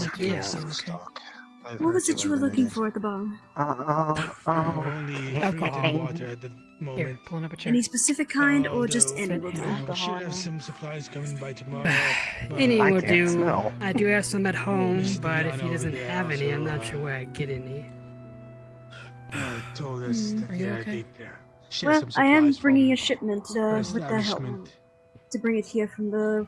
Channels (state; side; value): identical; both; correlation 1.00